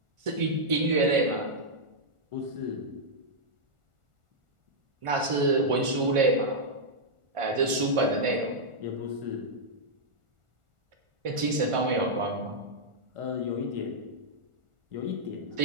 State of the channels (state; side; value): late; left; 1.4 ms